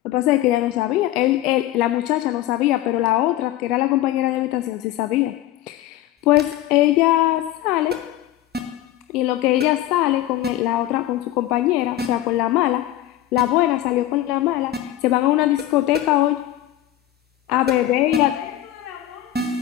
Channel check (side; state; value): right; quieter; 13.8 dB